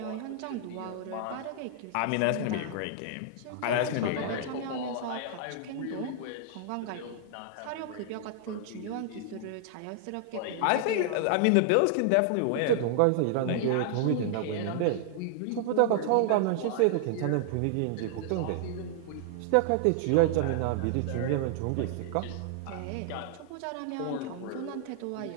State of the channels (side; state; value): both; different; correlation -0.01